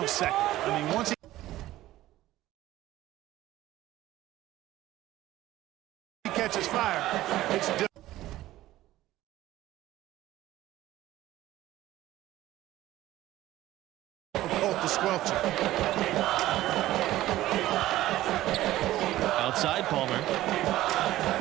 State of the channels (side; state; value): left; quieter; 15.3 dB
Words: I mean, once he catches fire, it's different. To squelch it.